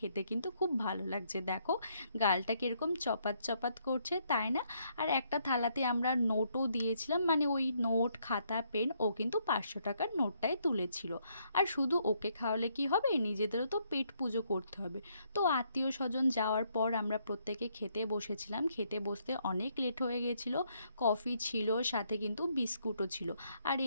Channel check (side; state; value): both; inverted; correlation -0.72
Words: কিন্তু খুব ভালো লাগছে। দেখো গালটা কীরকম চপাত চপাত করছে, তাই না? আর একটা থালাতে আমরা নোটও দিয়েছিলাম, মানে ওই নোট, খাতা, পেন। ও কিন্তু 500 টাকার নোটটাই তুলেছিল। আর শুধু ওকে খাওয়ালে কি হবে, নিজেদেরও তো পেট পুজো করতে হবে। তো আত্মীয় স্বজন যাওয়ার পর আমরা প্রত্যেকে খেতে বসেছিলাম। খেতে বসতে অনেক লেট হয়ে গেছিল। কফি ছিল, সাথে কিন্তু বিস্কুটও ছিল। আর